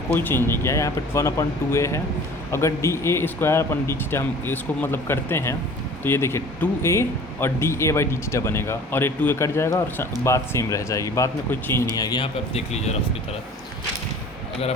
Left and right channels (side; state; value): both; normal; correlation 0.45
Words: कोई चेंज नहीं किया, यहाँ पे 1/2A है। अगर dA square upon D theta हम इसको मतलब करते हैं तो ये देखिए 2A और dA बाई डी थीटा बनेगा और ये 2A कट जाएगा और बात सेम रह जाएगी, बात में कोई चेंज नहीं आएगी। यहाँ पे आप देख लीजिए रफ की तरह, अगर